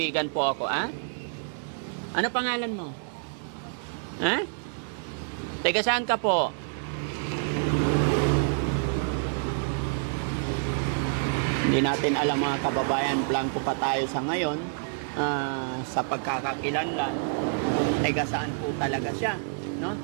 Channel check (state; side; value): silent; left; digital silence